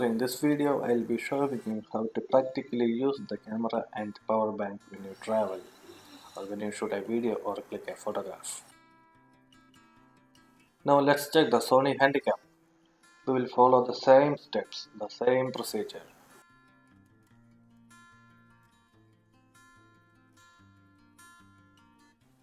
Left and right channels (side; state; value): both; identical; correlation 1.00